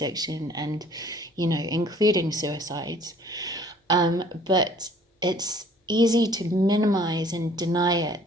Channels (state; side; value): normal; both; correlation 0.55